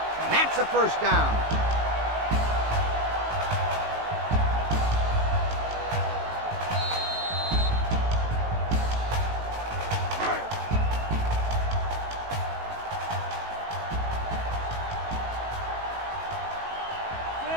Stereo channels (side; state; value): left; late; 18 ms